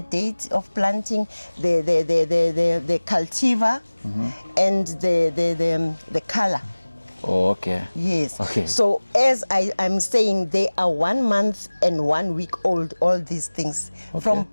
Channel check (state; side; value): inverted; both; correlation -1.00